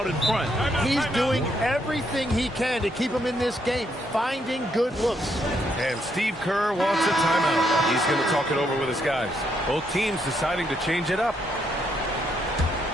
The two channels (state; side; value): normal; both; correlation 0.75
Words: in front. He's doing everything he can to keep him in this game, finding good looks. And Steve Kerr wants a timeout. He's going to talk it over with his guys. Both teams deciding to change it up.